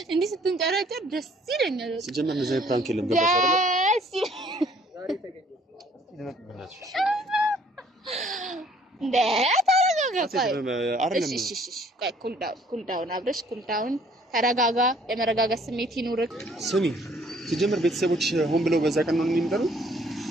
እንዲህ ስትንጨረጨር ደስ ይለኛል። ሲጀመር ነው ዘይ ፕራንክ የለም ገባሽ አይደል? ዛሬ ተገኘ እንደ ታረጋ አይደለም እሺ ቆይ ኩል ዳውን አብረሽ ኩል ዳውን ተረጋጋ የመረጋጋት ስሜት ይኑርክ ስሚ ሲጀምር ቤተሰቦች ሆን ብለው በዛ ቀን ነው የሚመጣው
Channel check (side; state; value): both; normal; correlation 0.60